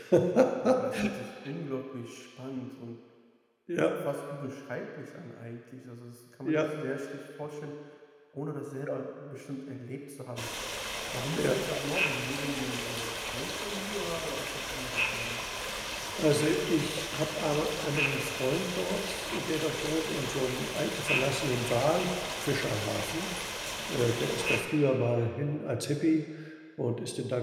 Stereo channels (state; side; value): identical; both; correlation 1.00